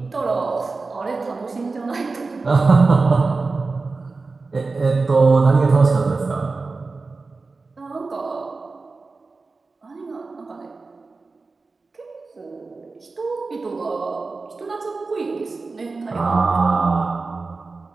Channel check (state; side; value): quieter; left; 3.9 dB